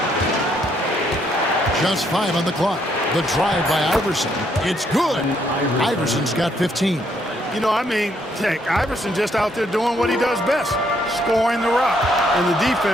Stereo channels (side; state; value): both; normal; correlation 0.71